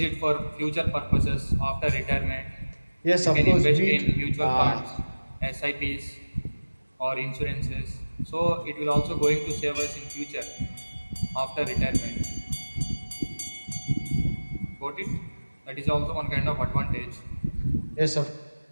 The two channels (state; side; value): inverted; both; correlation -1.00